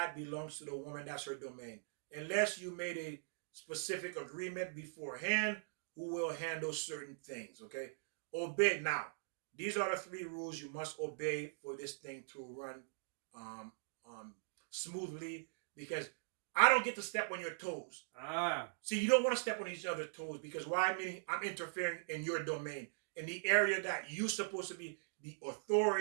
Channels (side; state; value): left; silent; digital silence